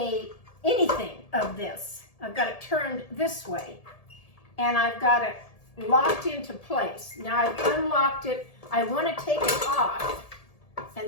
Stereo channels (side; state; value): right; late; 1.7 ms